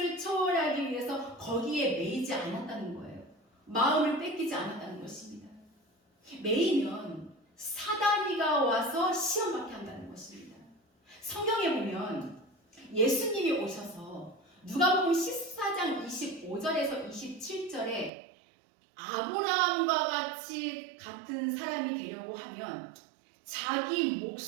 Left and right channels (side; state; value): left; drops out; at 18.1 s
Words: 초월하기 위해서 거기에 매이지 않았다는 거예요. 마음을 뺏기지 않았다는 것입니다. 매이면 사단이가 와서 시험받게 한다는 것입니다. 성경에 보면 예수님이 오셔서 누가복음 14장 25절에서 27절에 아브라함과 같이 같은 사람이 되려고 하면 자기